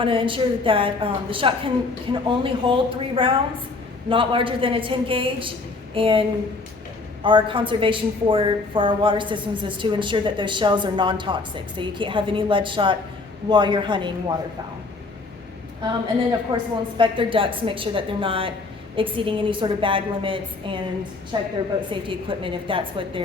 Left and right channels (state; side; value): quieter; right; 3.7 dB